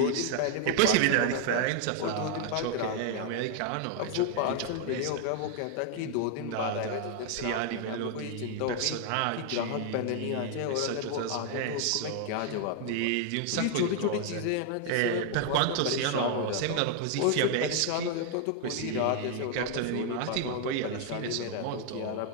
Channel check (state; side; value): different; both; correlation 0.00